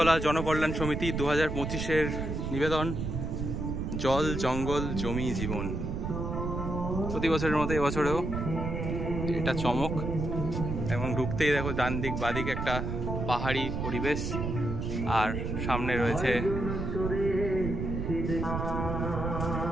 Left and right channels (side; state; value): right; noise; rumble, 3 dB below the sound